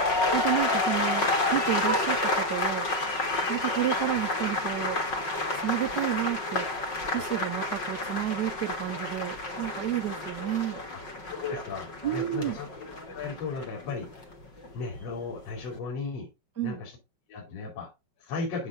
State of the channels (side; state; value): right; late; 5.5 ms